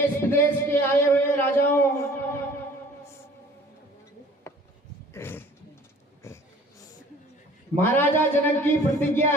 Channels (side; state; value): both; normal; correlation 0.51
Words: विदेश के आए हुए राजाओं, महाराजा जनक की प्रतिज्ञा